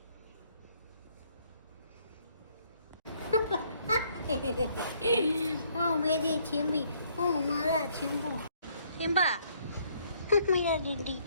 ओ मेरी चिम्बी, ओ मेरा चिम्बू, सिम्बा। मेरा डीडी,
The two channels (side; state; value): both; inverted; correlation -0.66